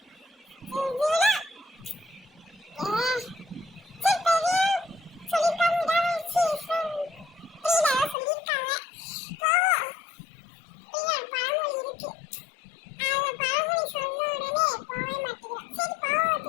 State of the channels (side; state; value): right; drops out; at 8.2 s